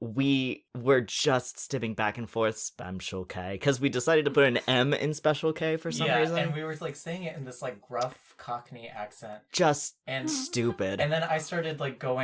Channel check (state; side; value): identical; both; correlation 1.00